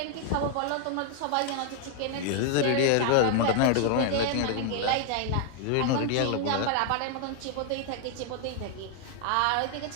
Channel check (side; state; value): both; different; correlation 0.00